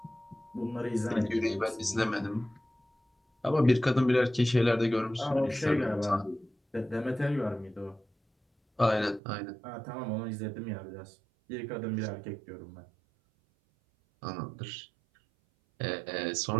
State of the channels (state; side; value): drops out; left; at 9.2 s